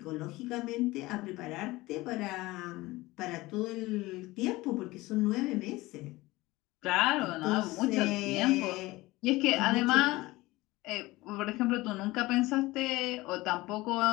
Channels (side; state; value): right; quieter; 19.9 dB